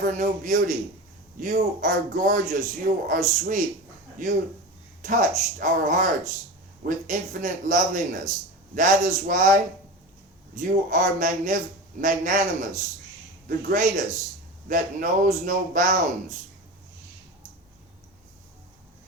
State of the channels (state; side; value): normal; both; correlation 0.28